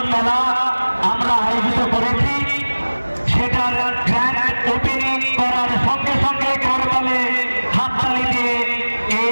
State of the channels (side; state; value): both; inverted; correlation -1.00